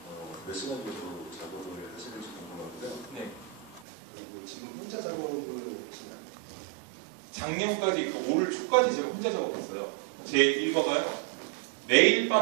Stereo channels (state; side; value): drops out; left; at 3.8 s